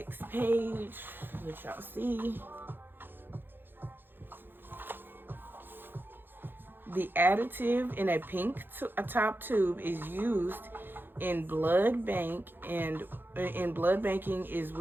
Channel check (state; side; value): late; left; 0.099 ms